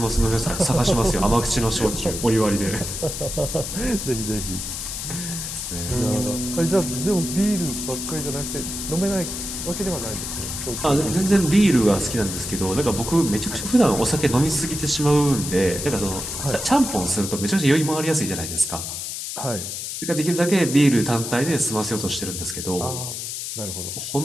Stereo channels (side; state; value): left; noise; hiss, 6 dB below the sound